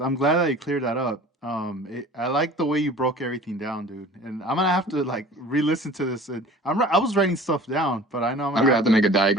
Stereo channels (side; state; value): both; normal; correlation 0.44